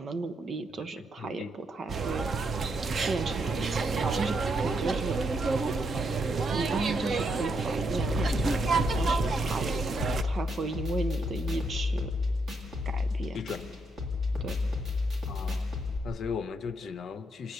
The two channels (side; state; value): both; normal; correlation 0.78